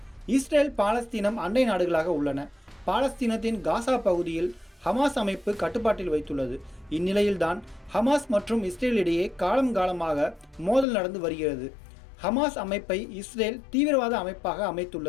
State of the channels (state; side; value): drops out; right; at 10.9 s